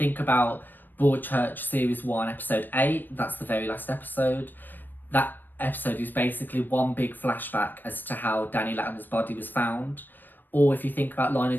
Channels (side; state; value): right; late; 0.090 ms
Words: about Broadchurch Series 1, Episode 8, that's the very last episode. That episode is basically one big flashback as to how Danny Latimer's body was found. Or if you think about Line